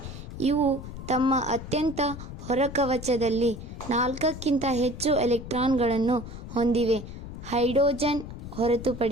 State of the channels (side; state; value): left; noise; rumble, 10 dB below the sound